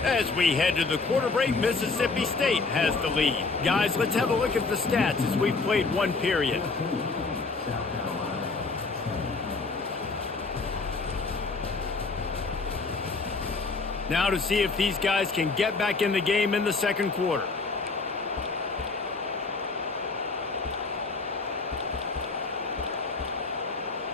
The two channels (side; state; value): right; quieter; 4.0 dB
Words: As we head to the quarter break, Mississippi State has the lead. Guys, let's have a look at the stats as we've played one period. Now to see if these guys can get back in the game in the second quarter.